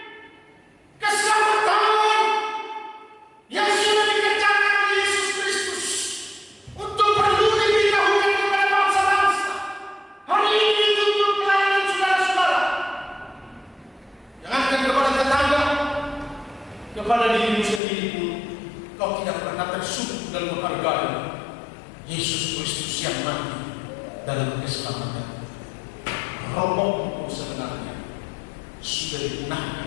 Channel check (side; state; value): right; drops out; at 17.8 s